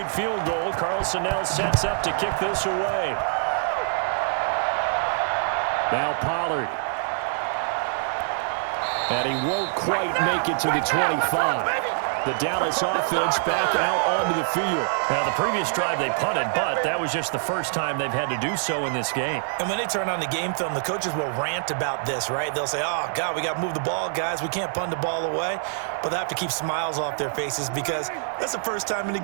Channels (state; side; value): silent; left; digital silence